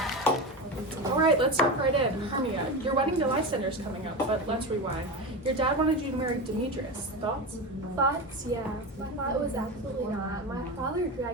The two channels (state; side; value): normal; both; correlation 0.22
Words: Alright, let's jump right in. Hermia, your wedding to Lysander's coming up, but let's rewind. Your dad wanted you to marry Demetrius. Thoughts? Thoughts? Yeah. My thought was absolutely not. My father